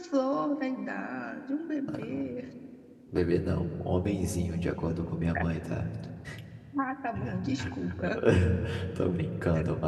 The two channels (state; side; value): identical; both; correlation 1.00